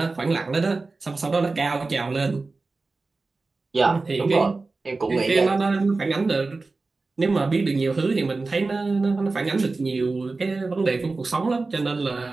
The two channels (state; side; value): quieter; left; 3.7 dB